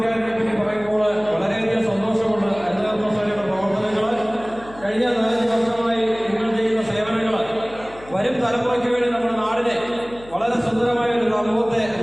പറ്റി പറയുമ്പോൾ വളരെയധികം സന്തോഷമുണ്ട്. ഹരിതകർമ്മസേനയുടെ പ്രവർത്തനങ്ങൾ, കഴിഞ്ഞ 4 വർഷമായി നിങ്ങൾ ചെയ്യുന്ന സേവനങ്ങൾ വരും തലമുറയ്ക്ക് വേണ്ടി നമ്മുടെ നാടിനെ വളരെ സുന്ദരമായ ഒരു സമൂഹത്തെ,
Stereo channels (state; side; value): noise; left; hum, 20 dB below the sound